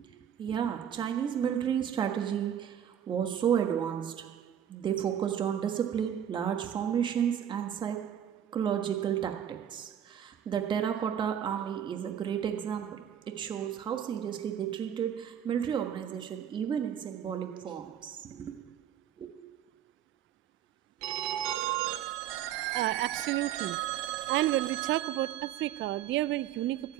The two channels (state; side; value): quieter; left; 9.8 dB